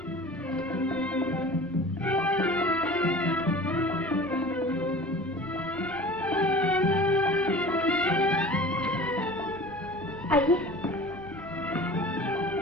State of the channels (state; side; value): noise; right; rumble, 21 dB below the sound